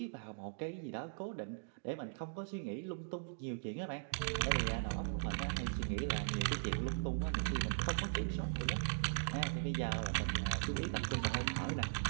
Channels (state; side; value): silent; left; digital silence